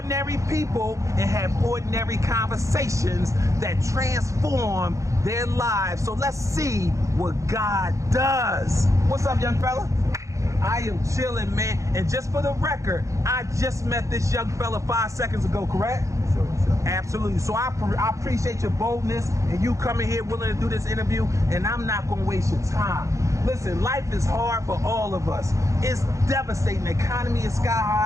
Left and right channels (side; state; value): left; late; 0.15 ms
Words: people, and have ordinary conversations that transform their lives. So let's see what God does. What's up, young fella? I am chilling, man. And just for the record, I just met this young fella 5 seconds ago, correct? Sure. Absolutely. So I appreciate your boldness and you coming here willing to do this interview, and I'm not going to waste your time. Listen, life is hard for all of us. It's devastating. The economy is sky